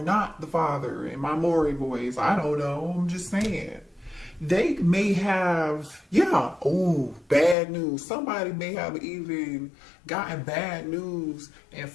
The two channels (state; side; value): drops out; right; at 7.6 s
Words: not the father in my Maury voice. I don't know. I'm just saying. They may have, bad news. Somebody may have even gotten bad news and